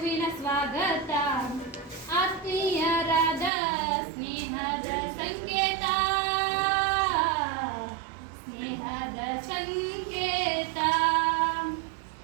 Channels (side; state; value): left; drops out; at 3.5 s